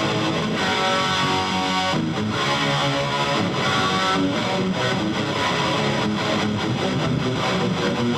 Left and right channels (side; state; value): both; identical; correlation 1.00